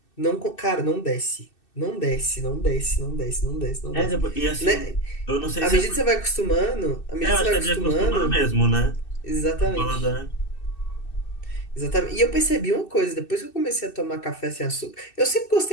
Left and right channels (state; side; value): late; right; 2.6 ms